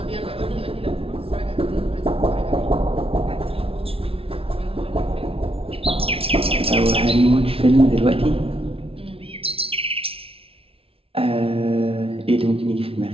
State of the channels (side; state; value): left; late; 0.27 ms